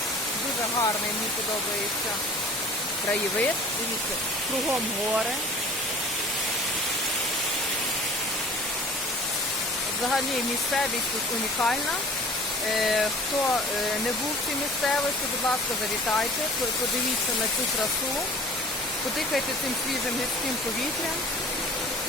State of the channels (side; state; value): both; normal; correlation 0.46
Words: Дуже гарний, мені подобається краєвид. Дивіться, кругом гори. Взагалі місцевість тут унікальна. Хто не був в цій місцевості, будь ласка, завітайте, подивіться на цю красу, подихайте цим свіжим гірським повітрям.